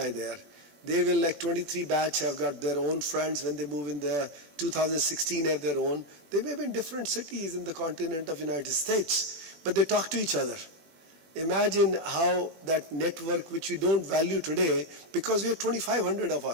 there. They will, like 23 batch, have got their own friends when they move in there. 2016 have their own. They may be in different cities in the continent of United States, but they talk to each other. Imagine how that network, which we don't value today, because we are 2,500 of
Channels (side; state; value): left; late; 21 ms